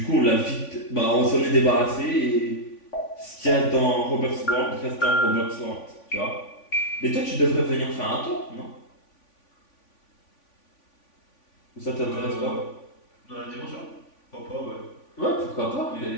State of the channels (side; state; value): right; late; 3.5 ms